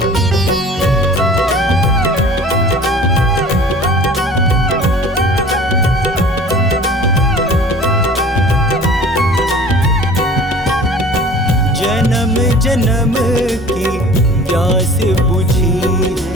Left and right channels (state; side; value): normal; both; correlation 0.45